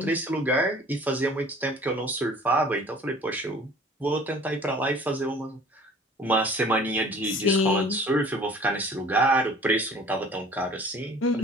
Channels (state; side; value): normal; both; correlation 0.49